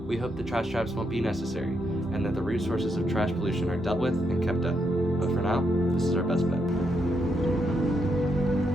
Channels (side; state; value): both; normal; correlation 0.79